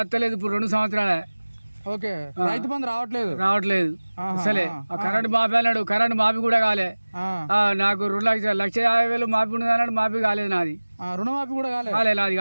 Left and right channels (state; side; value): inverted; both; correlation -1.00